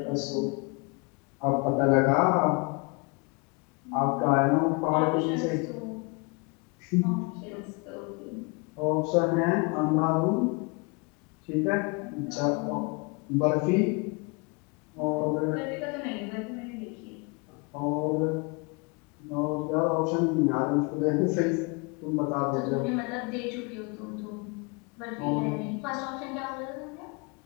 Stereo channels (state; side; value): quieter; right; 30.1 dB